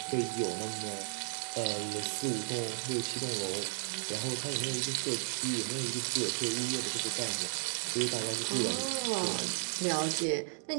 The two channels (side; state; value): left; silent; 55 dB below the other